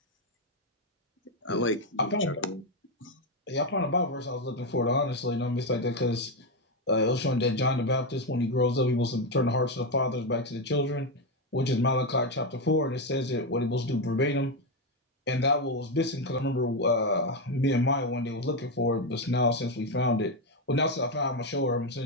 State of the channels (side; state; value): both; normal; correlation 0.07